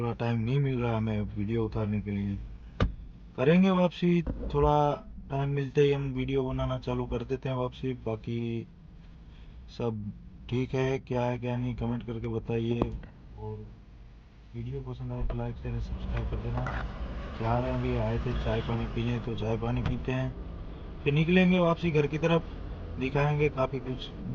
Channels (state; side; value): identical; both; correlation 1.00